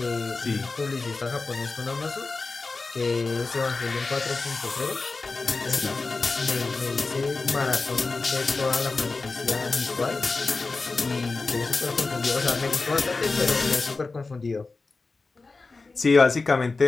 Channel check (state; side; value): quieter; right; 3.8 dB